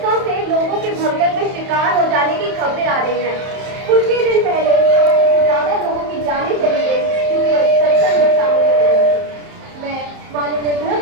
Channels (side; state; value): left; late; 31 ms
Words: से लोगों के भगदड़ में शिकार हो जाने की खबरें आ रही हैं। कुछ ही दिन पहले ज्यादा लोगों की जानें चली गई क्योंकि सत्संग में शामिल हो गई। मैं माननीय गृह